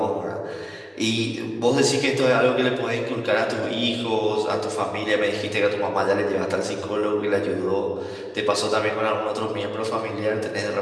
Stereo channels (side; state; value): both; identical; correlation 1.00